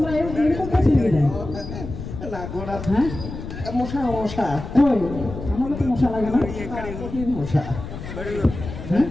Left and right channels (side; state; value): left; noise; rumble, 9 dB below the sound